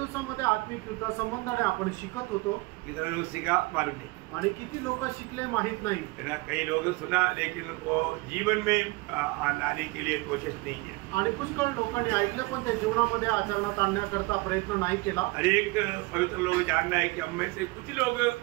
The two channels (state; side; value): quieter; left; 23.2 dB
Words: आत्मिक युद्धा संबंधाने आपण शिकत होतो। कितना लोग सीखा मालूम नहीं आणि किती लोक शिकले माहित नाही। कई लोग सुना लेकिन वो जीवन में लाने के लिए कोशिश नहीं किया आणि पुष्कळ लोकांनी ऐकलं पण ते जीवनामध्ये आचरणात आणण्याकरता प्रयत्न नाही केला। हर एक पवित्र लोग जानना है कि हम में से कुछ लोग